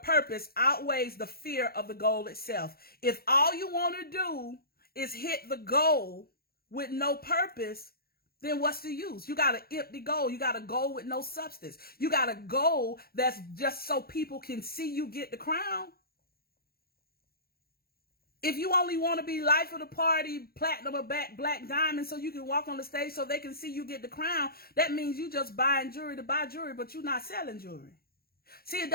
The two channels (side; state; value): right; late; 0.44 ms